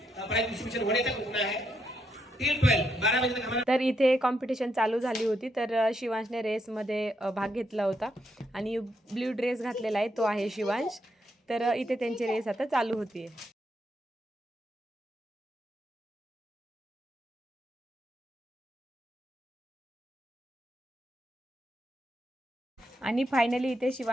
प्राइज डिस्ट्रीब्यूशन होने तक रुकना है. टिल 12 बजे तक हमारा. तर इथे कॉम्पिटिशन चालू झाली होती. तर शिवांशने रेसमध्ये भाग घेतला होता आणि ब्ल्यू ड्रेस घातलेला आहे, तो आहे शिवांश. तर इथे त्यांची रेस आता चालू होती. आणि फायनली इथे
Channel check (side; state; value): both; normal; correlation 0.78